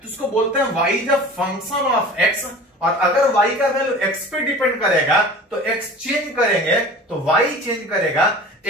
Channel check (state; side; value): normal; both; correlation 0.40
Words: तो उसको बोलते हैं y is a function of x। और अगर y का वैल्यू x पे डिपेंड करेगा तो x चेंज करेंगे तो y चेंज करेगा,